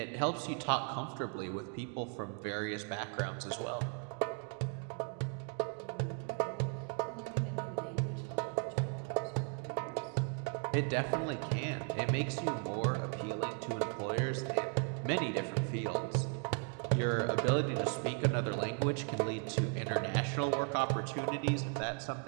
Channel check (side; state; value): left; quieter; 39.3 dB